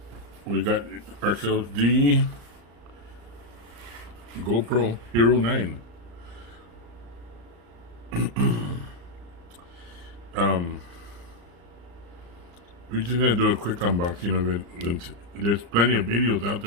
We got ourselves the Gopro Hero 9. We're just gonna do a quick unboxing of it. There's plenty of videos out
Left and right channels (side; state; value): left; late; 34 ms